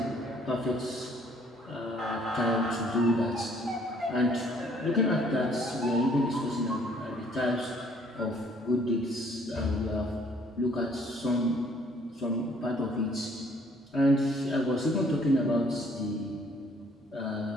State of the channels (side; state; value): both; normal; correlation 0.61